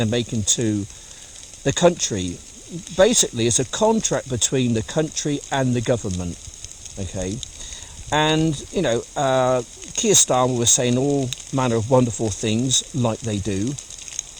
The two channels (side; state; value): both; identical; correlation 1.00